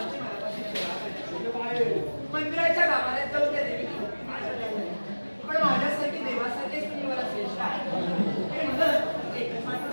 मनापासून सेवा करायची. मंदिराच्या गाभाऱ्यात जाऊन त्या देवी पण माझ्यासारखी देवासारखीच तुम्ही मला श्रेष्ठ आहे हे म्हणत एकच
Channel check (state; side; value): inverted; both; correlation -1.00